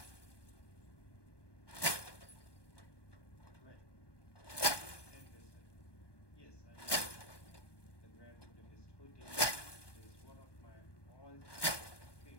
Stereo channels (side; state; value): right; late; 1.2 ms